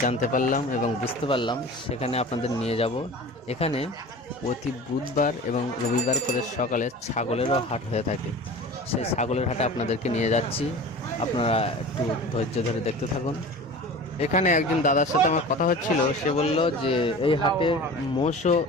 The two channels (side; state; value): both; normal; correlation 0.37